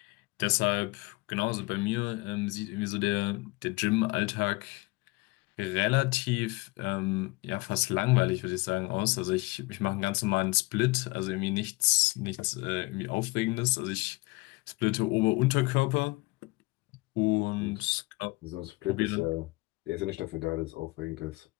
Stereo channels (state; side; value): quieter; right; 23.9 dB